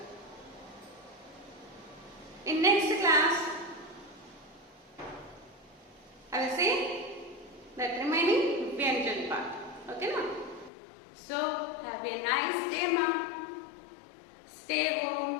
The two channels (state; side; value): drops out; right; at 10.7 s